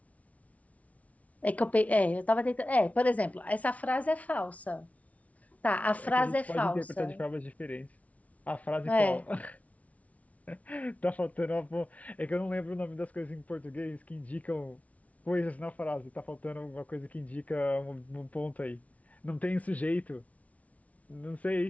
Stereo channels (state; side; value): late; right; 0.068 ms